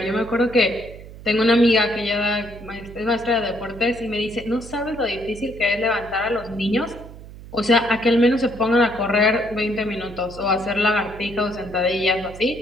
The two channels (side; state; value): right; noise; hum, 16 dB below the sound